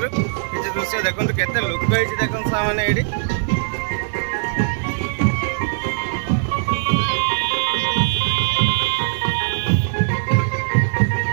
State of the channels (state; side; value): silent; left; 65 dB below the other